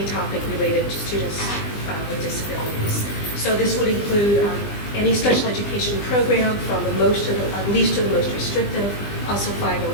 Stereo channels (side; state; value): right; late; 20 ms